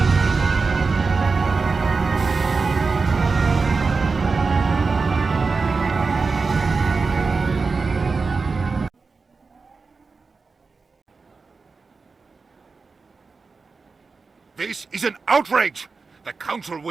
This is an outrage! The Council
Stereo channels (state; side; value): quieter; left; 4.4 dB